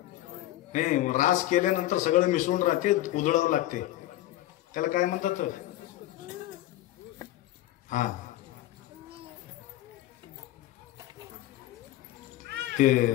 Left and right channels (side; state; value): right; quieter; 15.0 dB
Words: नाही रास केल्यानंतर सगळं मिसळून राहते, उधळावं लागते. त्याला काय म्हणतात? हा, ते